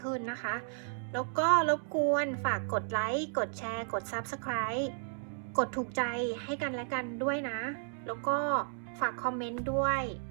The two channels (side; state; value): left; silent; 55 dB below the other